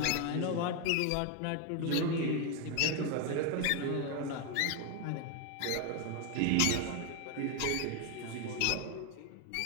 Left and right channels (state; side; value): different; both; correlation 0.01